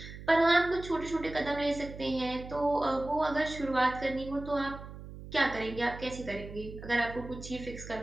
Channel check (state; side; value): noise; right; hum, 13 dB below the sound